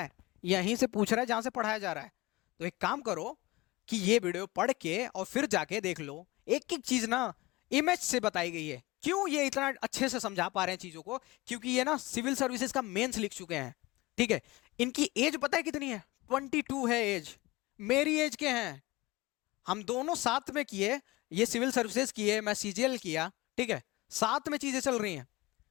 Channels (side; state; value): right; quieter; 20.5 dB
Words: यहीं से पूछ रहा है जहां से पढ़ाया जा रहा है। तो एक काम करो कि ये वीडियो पढ़ के और फिर जाके देख लो, एक एक चीज ना इमेज से बताई गई है। क्यों ये इतना अच्छे से समझा पा रहे हैं चीजों को? क्योंकि ये ना सिविल सर्विसेज का मेंस लिख चुके हैं। ठीक है, इनकी एज पता है कितनी है? 22 है एज, मेरी एज के हैं। हम दोनों साथ में किए, ये सिविल सर्विसेज किए, मैं सीजीएल किया। ठीक है, साथ में चीजें चल रही हैं।